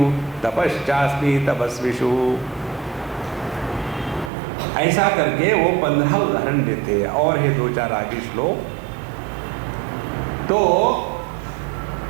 तपश्चास्मि तपस्विषु। ऐसा करके वो 15 उदाहरण देते हैं। और है 2-4 आगे श्लोक। तो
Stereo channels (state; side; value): drops out; left; at 4.3 s